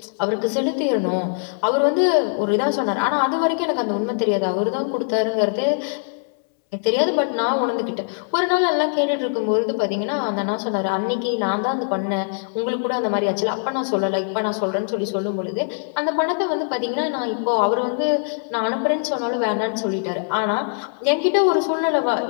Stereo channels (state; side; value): silent; right; 62 dB below the other